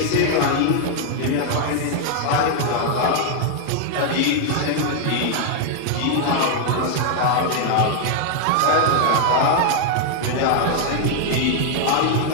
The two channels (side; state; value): both; different; correlation 0.00